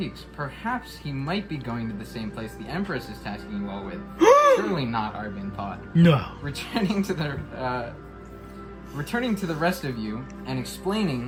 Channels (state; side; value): identical; both; correlation 1.00